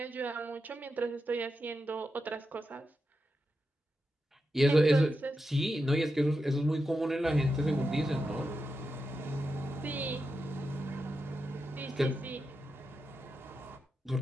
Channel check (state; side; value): normal; both; correlation 0.88